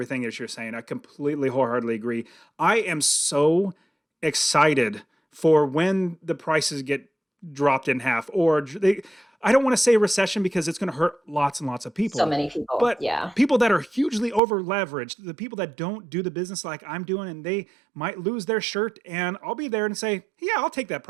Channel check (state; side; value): drops out; left; at 14.4 s